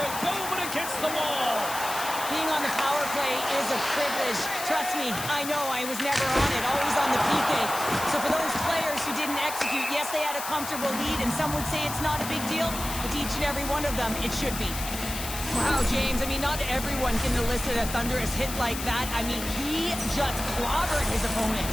go but against the wall. Being on the power play is a privilege. Trust me, I know I was never on it, always on the PK. So for those players who didn't execute, yes, they had a comfortable lead, and some would say it's not a big deal, but to each and every one of them, it should be. Wow, James, I mean, not everyone can elicit a thunderous hit like that. I mean, he just clobbered his opponent.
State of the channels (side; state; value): left; noise; hiss, 7 dB below the sound